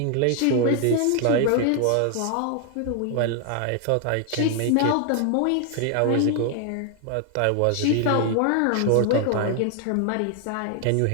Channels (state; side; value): different; both; correlation 0.00